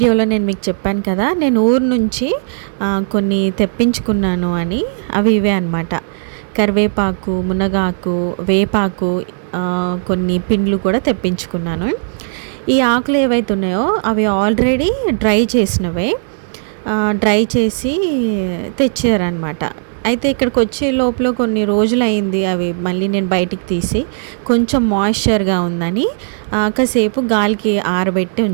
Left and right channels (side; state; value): left; silent; digital silence